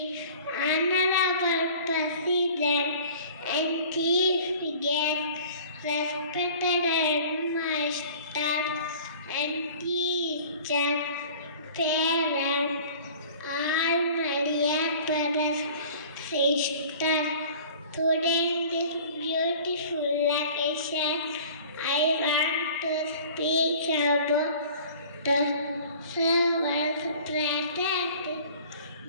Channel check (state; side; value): inverted; both; correlation -0.46